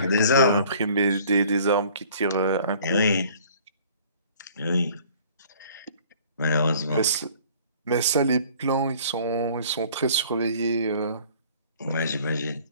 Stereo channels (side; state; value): both; inverted; correlation -0.52